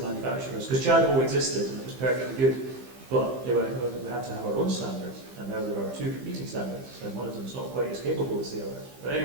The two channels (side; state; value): left; late; 15 ms